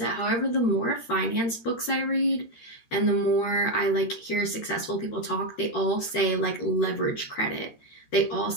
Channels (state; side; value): late; right; 13 ms